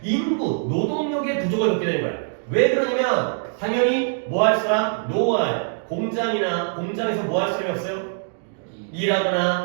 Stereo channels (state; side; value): silent; left; digital silence